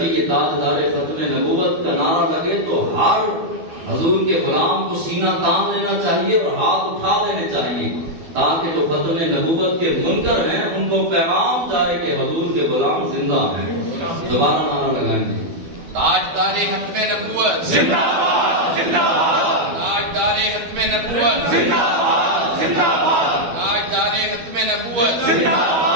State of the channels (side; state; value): left; late; 12 ms